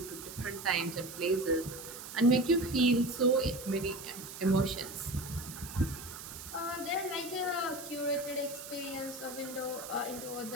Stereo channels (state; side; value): noise; right; hiss, 11 dB below the sound